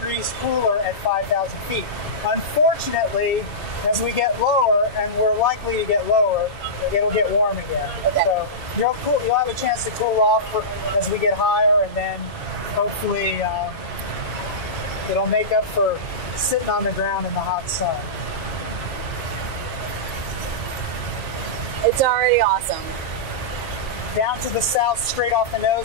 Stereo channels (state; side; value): normal; both; correlation -0.16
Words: cooler at 5,000 feet. Unfortunately, as we get lower, and we're likely to get lower, it'll get warm again. Okay. So you'll have a chance to cool off as we get higher, and then hopefully it'll make up for sitting on the ground in the hot sun. It's already awesome. Down to the south, straight off the